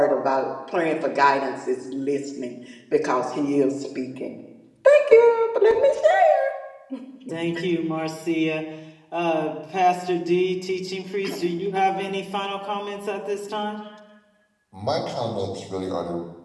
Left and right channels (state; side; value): identical; both; correlation 1.00